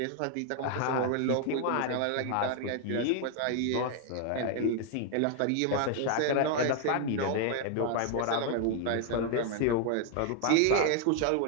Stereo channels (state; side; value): different; both; correlation 0.00